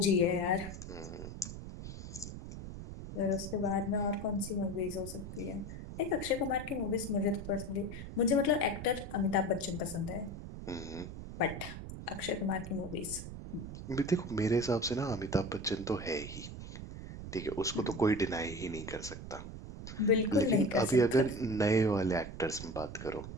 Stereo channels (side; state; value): right; noise; rumble, 10 dB below the sound